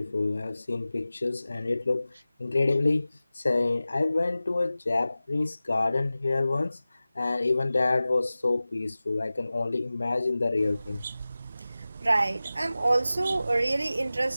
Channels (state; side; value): inverted; both; correlation -0.97